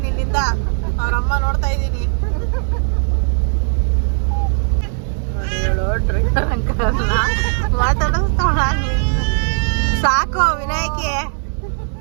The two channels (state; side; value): silent; left; 60 dB below the other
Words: ಇಲ್ಲಿಂದ, ಅವ್ರಮ್ಮ ನೋಡ್ತಾ ಇದ್ದೀನಿ. ಮಾತಾಡಿಸ್ತಾಳ ಸಾಕು. ವಿನಾಯಕಿ